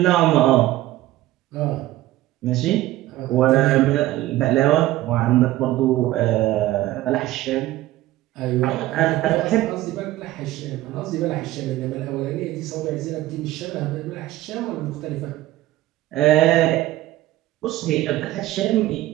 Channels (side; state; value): left; quieter; 15.7 dB